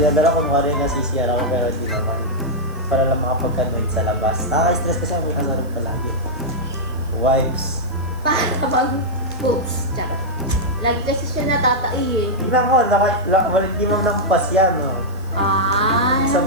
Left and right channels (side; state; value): left; noise; hiss, 27 dB below the sound